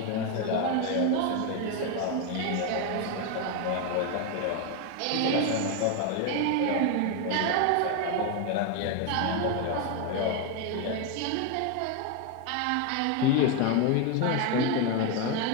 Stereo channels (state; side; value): different; both; correlation 0.02